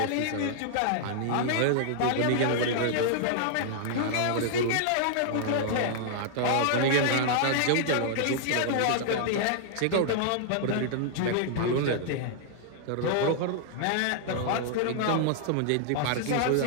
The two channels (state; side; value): different; both; correlation -0.01